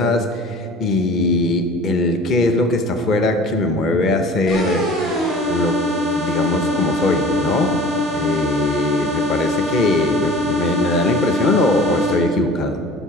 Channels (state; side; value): normal; both; correlation 0.44